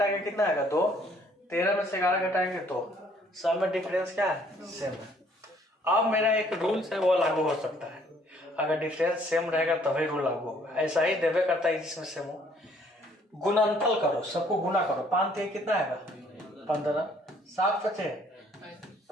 के कितना आएगा 2, 13 में से 11 घटाएंगे तो सब में डिफरेंस क्या है, सेम है। अब मेरा एक रूल्स है वो लागू हो सकता है, अगर डिफरेंस सेम रहेगा तभी रूल लागू होगा। ऐसा ही देवे करता है जिसमें सेम हो। गुणनफल करो, सबको गुना करो, 5 3 कितना आएगा 15, 7 5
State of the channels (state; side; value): normal; both; correlation 0.62